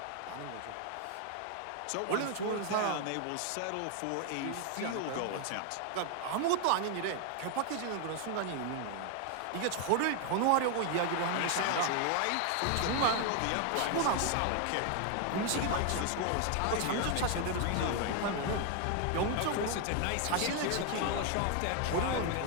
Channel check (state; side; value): different; both; correlation 0.01